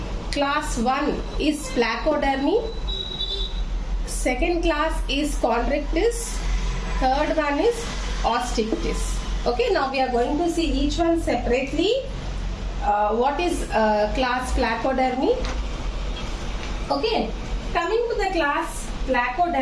class 1 is Placodermi, second class is Chondrichthyes, third one is Osteichthyes. Okay, now we are going to see each one separately. What is class Placodermi? Okay, coming to the class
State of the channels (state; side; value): identical; both; correlation 1.00